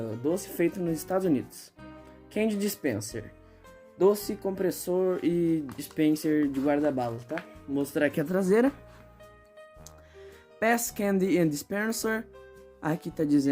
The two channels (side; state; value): both; identical; correlation 1.00